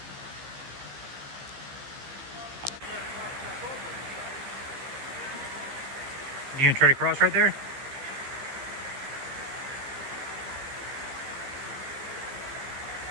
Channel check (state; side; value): late; left; 15 ms